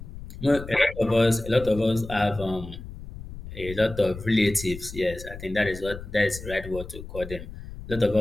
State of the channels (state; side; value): noise; left; rumble, 12 dB below the sound